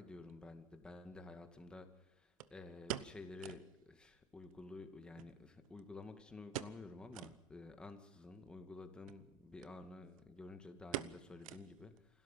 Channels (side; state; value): left; quieter; 3.3 dB